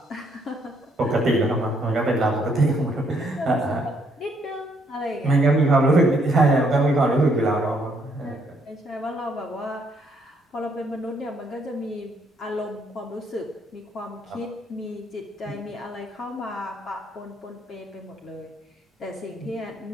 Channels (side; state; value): both; normal; correlation 0.70